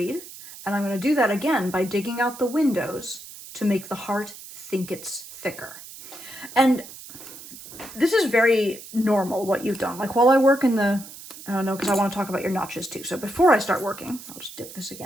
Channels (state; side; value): noise; right; hiss, 15 dB below the sound